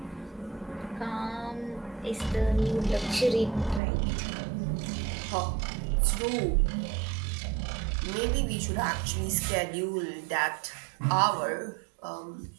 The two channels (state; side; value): drops out; left; at 3.8 s